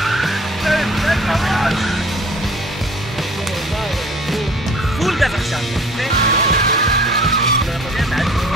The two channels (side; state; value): both; normal; correlation 0.50